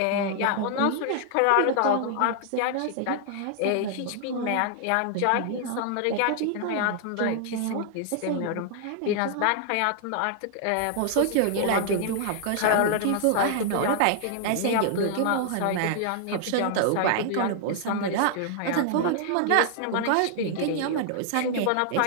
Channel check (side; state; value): both; different; correlation 0.00